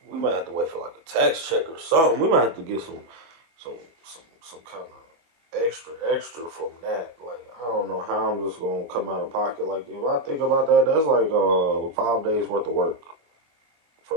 We might have to wait for like a tax check or something. We might have to get some kind of extra from that. Like I don't know how I'm just gonna come out of pocket. Like if I think about that, that's like 5 days worth of work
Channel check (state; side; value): late; left; 24 ms